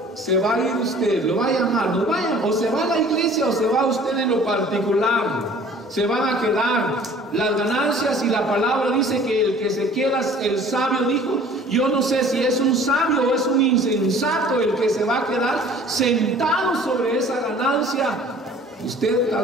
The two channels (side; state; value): both; normal; correlation 0.50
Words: se va a ir usted, lo va a llamar, no vaya, o se va a la iglesia o se va usted en lo particular. Se van a quedar las ganancias, y la palabra dice que el que se queda, el sabio dijo, yo no sé si es un sabio o es un insensato el que se va a quedar sentado sobre esa ganancia. Usted